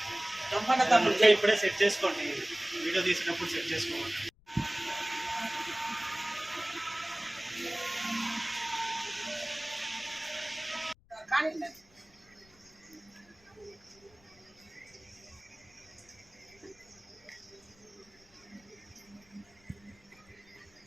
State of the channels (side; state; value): left; noise; rumble, 30 dB below the sound